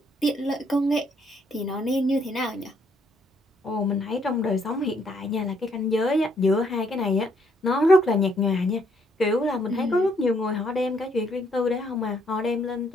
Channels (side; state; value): both; normal; correlation 0.70